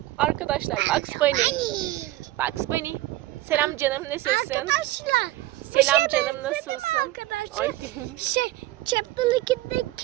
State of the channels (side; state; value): left; quieter; 16.9 dB